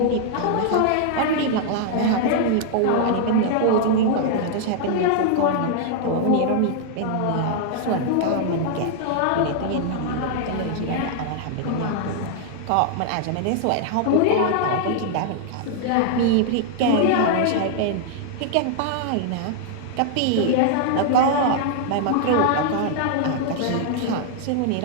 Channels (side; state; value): both; different; correlation -0.01